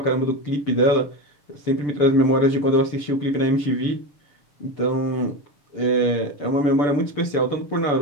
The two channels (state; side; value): late; right; 6.8 ms